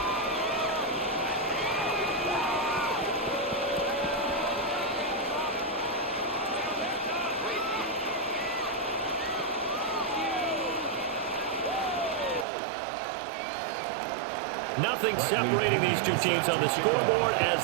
Nothing separating these two teams on the scoreboard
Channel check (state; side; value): drops out; left; at 12.5 s